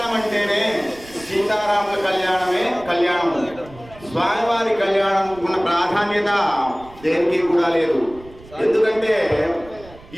అంటేనే సీతారాముల కళ్యాణమే కళ్యాణం. స్వామివారి కళ్యాణం ఉన్న ప్రాధాన్యత దేనికి కూడా లేదు. ఎందుకంటే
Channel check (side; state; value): right; noise; rumble, 21 dB below the sound